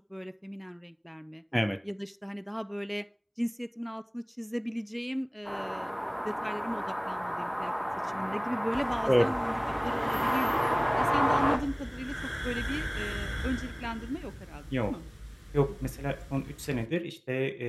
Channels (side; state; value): both; identical; correlation 1.00